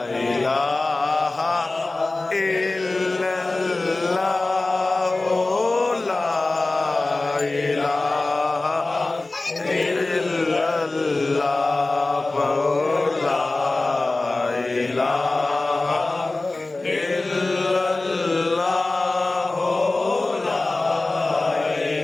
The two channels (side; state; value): right; quieter; 3.1 dB